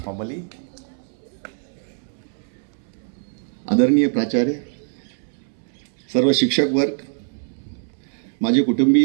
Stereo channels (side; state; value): left; silent; 62 dB below the other